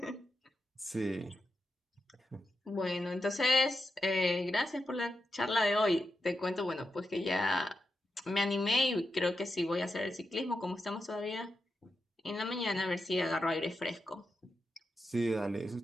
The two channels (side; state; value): both; normal; correlation 0.87